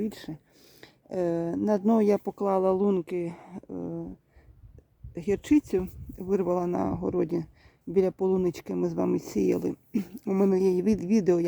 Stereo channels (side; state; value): both; identical; correlation 1.00